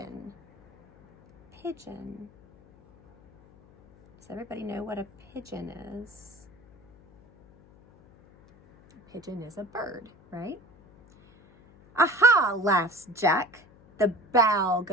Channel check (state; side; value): noise; left; hum, 27 dB below the sound